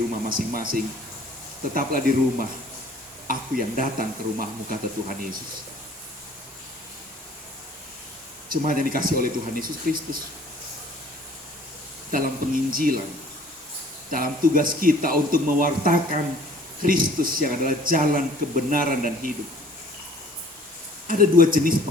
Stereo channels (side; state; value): both; normal; correlation 0.53